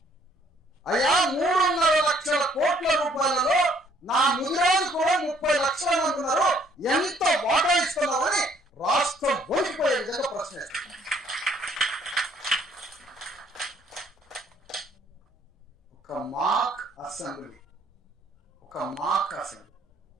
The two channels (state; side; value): normal; both; correlation 0.63